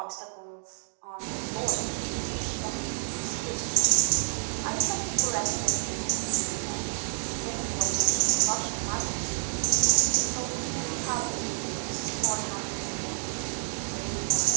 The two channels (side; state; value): left; silent; digital silence